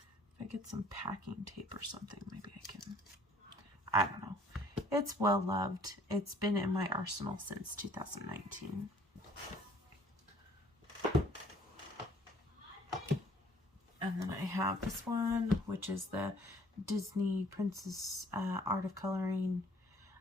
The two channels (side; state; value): both; normal; correlation 0.57